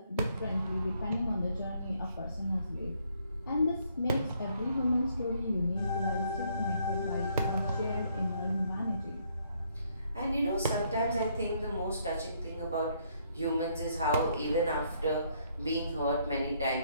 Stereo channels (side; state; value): both; inverted; correlation -0.69